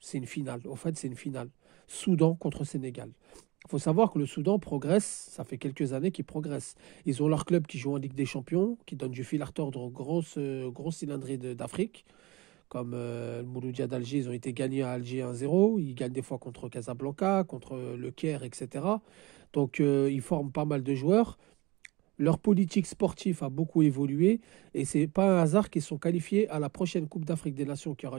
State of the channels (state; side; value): quieter; left; 22.0 dB